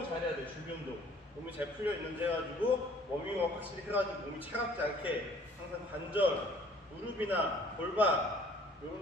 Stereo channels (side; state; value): both; normal; correlation 0.55